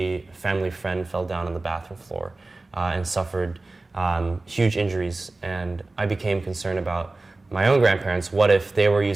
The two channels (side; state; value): left; quieter; 3.2 dB